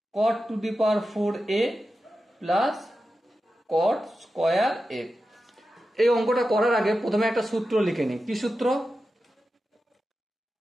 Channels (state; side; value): normal; both; correlation 0.91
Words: cot to the power 4a plus cot square a। এই অঙ্কটা করার আগে প্রথমে একটা সূত্র লিখে নিই। কি সূত্র?